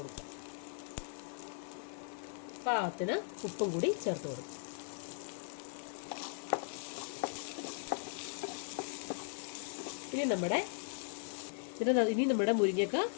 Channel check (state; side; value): silent; right; digital silence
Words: പാകത്തിന് ഉപ്പും കൂടി ചേർത്ത് കൊടുക്കും. ഇനി നമ്മുടെ മുരിങ്ങക്ക